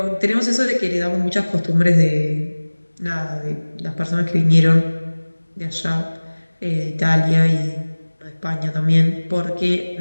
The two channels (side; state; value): both; inverted; correlation -1.00